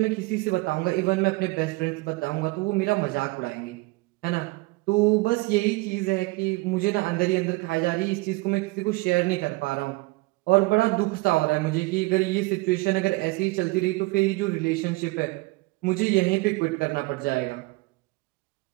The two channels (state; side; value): quieter; left; 23.5 dB